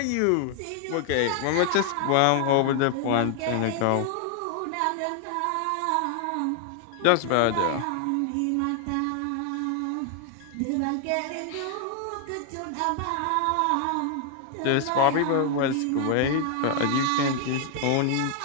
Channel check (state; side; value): different; both; correlation 0.00